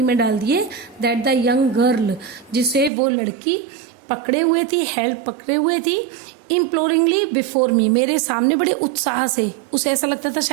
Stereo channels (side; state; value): left; drops out; at 2.9 s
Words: में डाल दिए, दैट द यंग गर्ल जिसे वो लड़की पकड़े हुए थी, हेल्ड पकड़े हुए थी, इम्प्लोरिंगली बिफोर मी मेरे सामने बड़े उत्साह से, उसे ऐसा लगता था